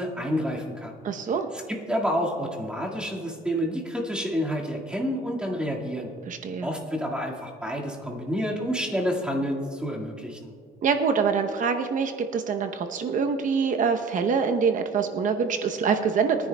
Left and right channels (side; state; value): left; quieter; 3.2 dB